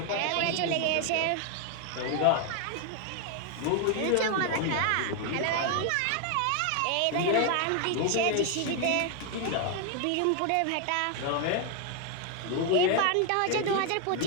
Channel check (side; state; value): both; different; correlation 0.01